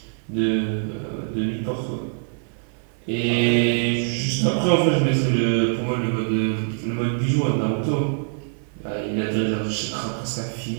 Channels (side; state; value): left; silent; digital silence